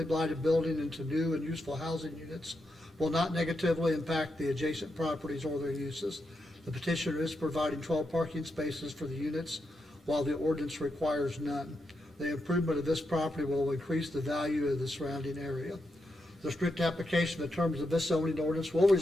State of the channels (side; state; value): both; normal; correlation 0.85